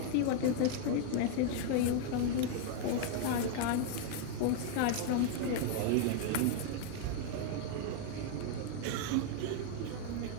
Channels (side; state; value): both; different; correlation 0.00